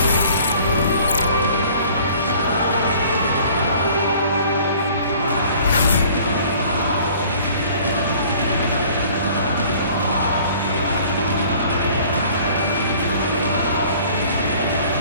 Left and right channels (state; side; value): inverted; both; correlation -0.52